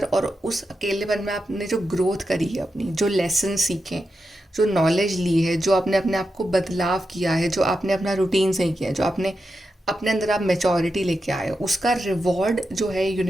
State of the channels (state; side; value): normal; both; correlation 0.88